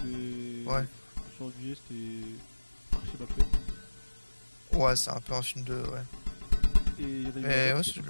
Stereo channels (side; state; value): both; inverted; correlation -1.00